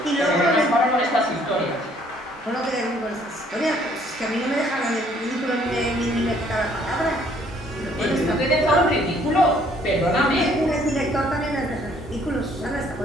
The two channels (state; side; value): normal; both; correlation 0.62